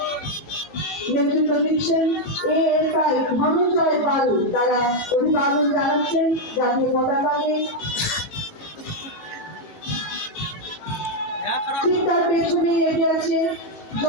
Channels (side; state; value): right; late; 18 ms